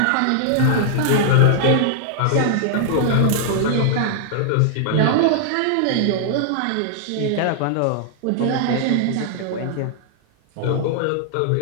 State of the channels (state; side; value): different; both; correlation -0.01